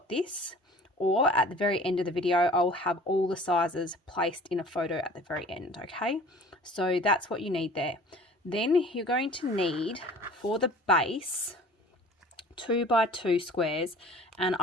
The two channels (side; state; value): both; normal; correlation 0.46